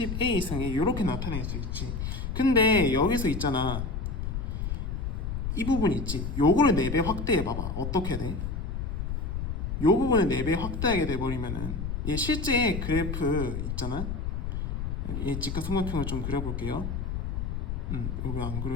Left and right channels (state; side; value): noise; left; rumble, 3 dB below the sound